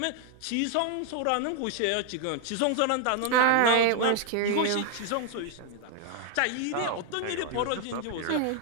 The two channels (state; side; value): different; both; correlation -0.01